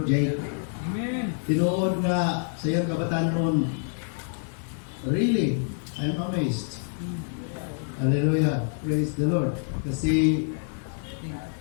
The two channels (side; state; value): right; silent; 60 dB below the other